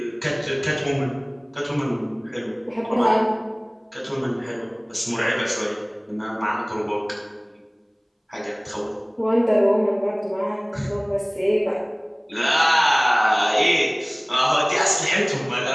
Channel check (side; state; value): both; identical; correlation 1.00